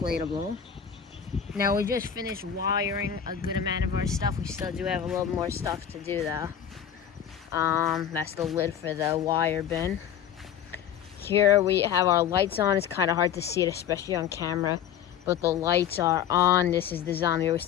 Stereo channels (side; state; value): right; quieter; 8.9 dB